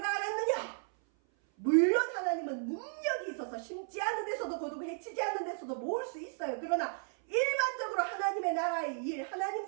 알았느냐? 물론 하나님은 능력이 있어서 심지 않은 데서도 거두고 해치지 않은 데서도 모을 수 있어요. 그러나 일반적으로 하나님의 나라의 일, 하나님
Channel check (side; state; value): left; silent; 55 dB below the other